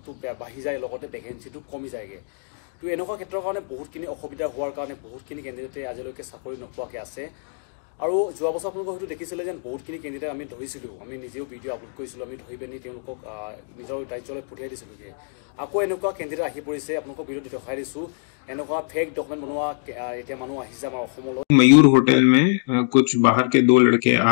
বাঢ়ি যায় লগতে ভেকেন্সিটো কমি যায়গে তো এনেকুৱা ক্ষেত্ৰৰ কাৰণে বহুতখিনি অসুবিধা হোৱাৰ কাৰণে বহুতখিনি কেন্দ্ৰতে আজিলৈকে চাকৰি নোপোৱাকৈ আছে আৰু যোৱা বছৰ আপোনালোকে হয়তো দেখিছিলে যে বহুতখিনি কেন্দ্ৰতে আমি ধৰিছিলোঁ আমি নিজেও ভিডিঅ' আপলোড কৰিছিলোঁ আমি ধৰি পিনি তেওঁলোকক নিজৰ ৰাজ্যলৈ পঠিয়াই দিছিলোঁগৈ আকৌ এনেকুৱা কেন্দ্ৰতে আহি পৰিছে আপোনালোকক ভিডিঅ'ত দেখাই দিছোঁ এনেকুৱা फेक डॉक्यूमेंट बनवा इतना मानु आहिजा हमारा अखमलो मयूर होटल में कुछ बाहर के दो लड़के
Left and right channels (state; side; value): silent; right; 62 dB below the other